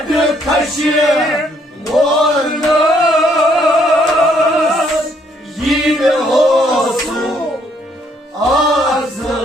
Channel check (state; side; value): normal; both; correlation 0.68